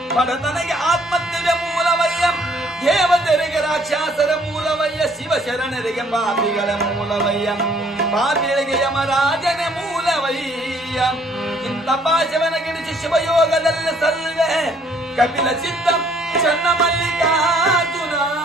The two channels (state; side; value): normal; both; correlation 0.62